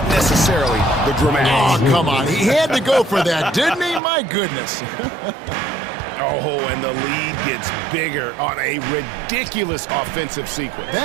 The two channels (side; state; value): left; drops out; at 4.0 s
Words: necessarily the dramatics. Oh, come on. He had to go for that, didn't he? My goodness. Oh, and the lead gets bigger on a ridiculous offensive sequence.